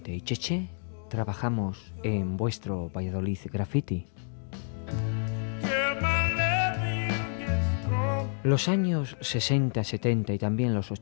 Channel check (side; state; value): right; silent; 58 dB below the other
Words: y Cheche trabajamos en vuestro Valladolid Graffiti. Los años 60, 70 y también los